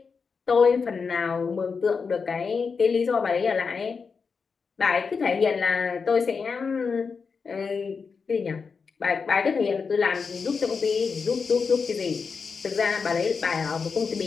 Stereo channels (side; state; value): right; quieter; 5.3 dB